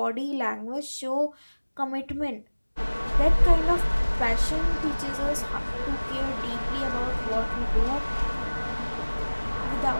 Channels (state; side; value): inverted; both; correlation -1.00